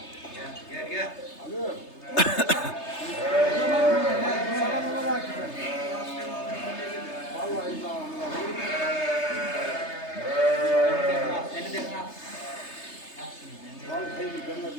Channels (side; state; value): right; late; 3.3 ms